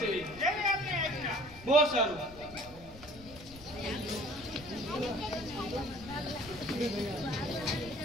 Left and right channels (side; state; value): left; noise; rumble, 18 dB below the sound